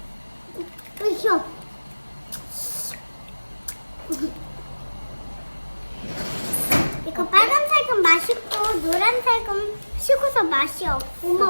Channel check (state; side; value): inverted; both; correlation -1.00